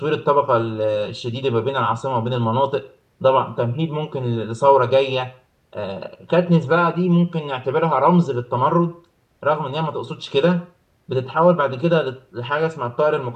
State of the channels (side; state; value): both; identical; correlation 1.00